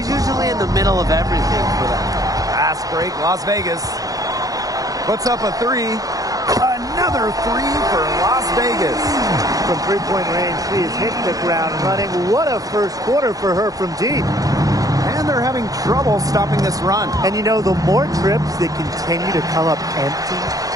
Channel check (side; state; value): left; late; 0.17 ms